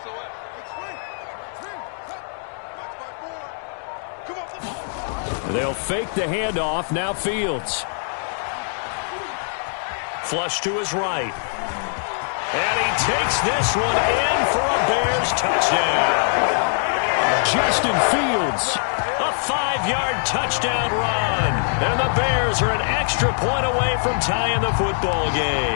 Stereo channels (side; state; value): right; silent; digital silence